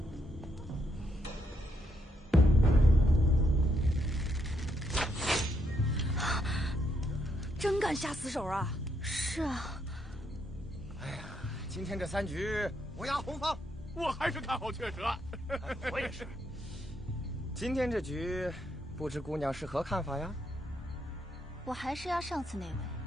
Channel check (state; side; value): normal; both; correlation 0.77